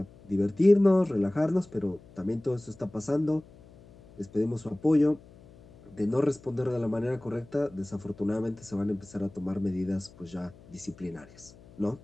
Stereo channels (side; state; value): left; noise; hum, 23 dB below the sound